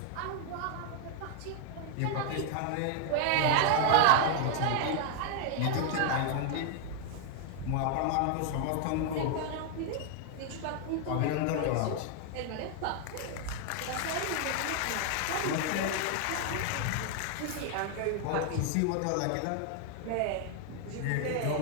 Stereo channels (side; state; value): both; different; correlation 0.00